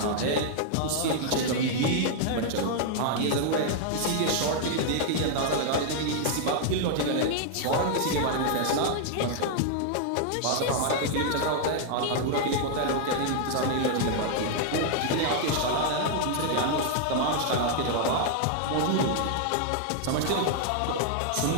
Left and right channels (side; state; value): both; different; correlation 0.00